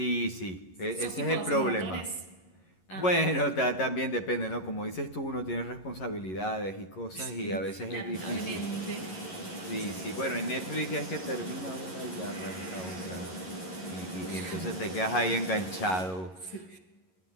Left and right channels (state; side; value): late; right; 11 ms